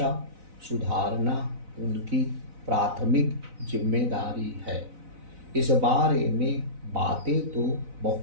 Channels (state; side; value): late; left; 4.0 ms